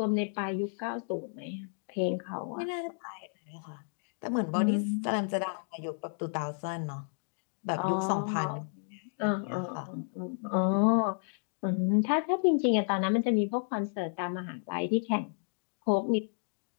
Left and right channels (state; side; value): silent; right; digital silence